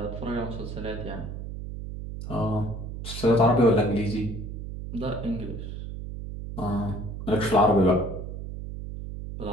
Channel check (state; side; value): noise; right; hum, 8 dB below the sound